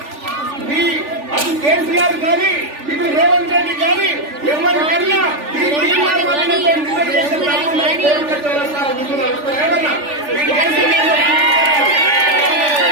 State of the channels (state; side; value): late; left; 3.4 ms